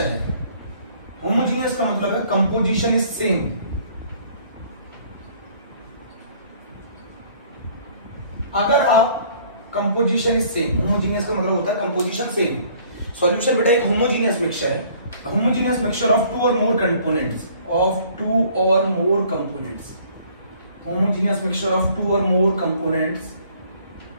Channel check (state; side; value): inverted; both; correlation -0.57